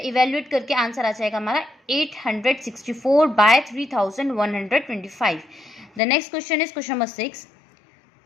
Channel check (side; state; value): right; drops out; at 6.0 s